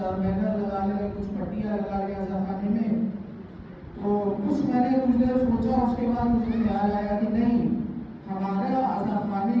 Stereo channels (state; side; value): identical; both; correlation 1.00